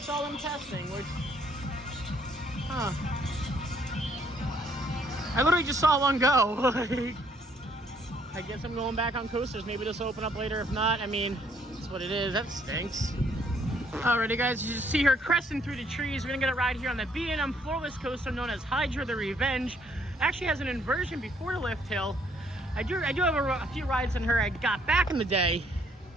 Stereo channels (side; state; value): both; normal; correlation 0.66